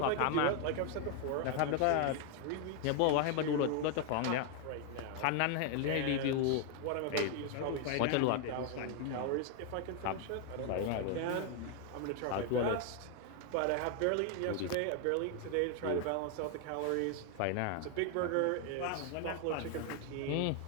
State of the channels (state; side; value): different; both; correlation 0.00